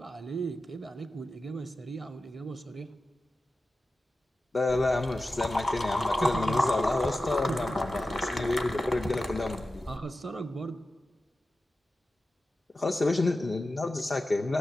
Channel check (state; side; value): normal; both; correlation 0.93